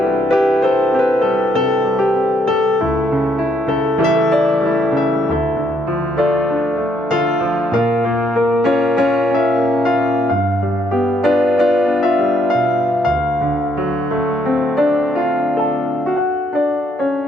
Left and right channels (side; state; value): both; normal; correlation 0.72